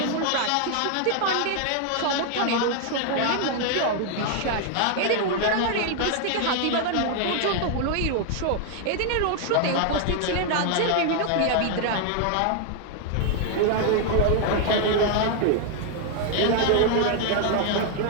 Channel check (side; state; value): both; different; correlation 0.00